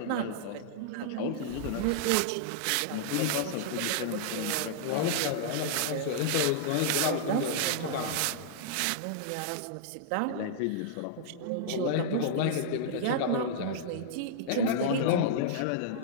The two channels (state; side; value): different; both; correlation -0.02